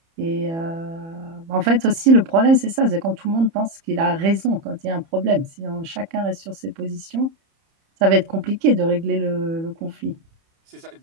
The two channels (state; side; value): late; left; 30 ms